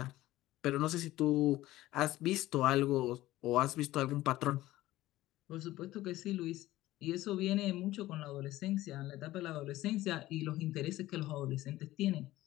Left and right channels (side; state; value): right; quieter; 16.3 dB